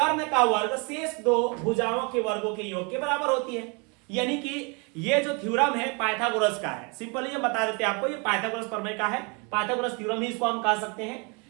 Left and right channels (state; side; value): quieter; left; 32.1 dB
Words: का वर्ग शेष 2 भुजाओं के वर्गों के योग के बराबर होती है। यानी कि ये जो थ्योरम है पाइथागोरस का है, सिंपली ये बता देते हैं आपको, ये पाइथागोरस प्रमेय का है, पाइथागोरस थ्योरम ही इसको हम कह सकते हैं।